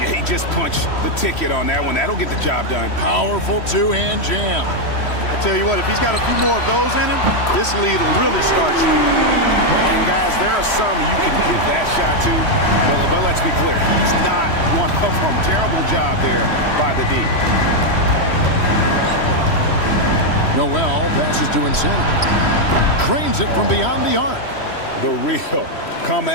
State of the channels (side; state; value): right; late; 3.1 ms